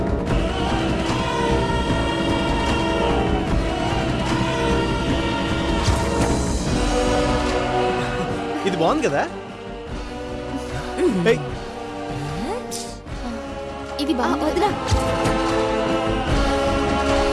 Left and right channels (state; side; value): identical; both; correlation 1.00